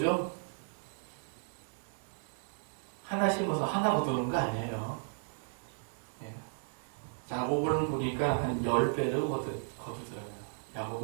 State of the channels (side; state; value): left; silent; digital silence